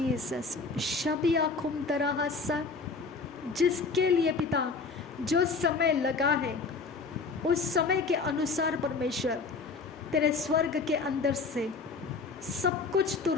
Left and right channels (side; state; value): right; quieter; 4.4 dB